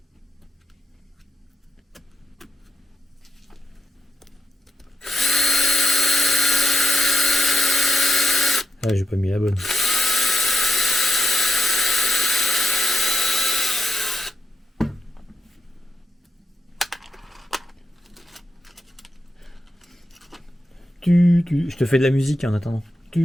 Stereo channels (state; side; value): normal; both; correlation 0.88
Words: Ah, j'ai pas mis la bonne. Je te fais de la musique en attendant.